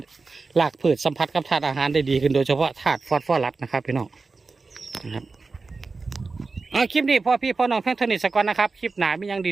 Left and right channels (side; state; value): left; quieter; 4.1 dB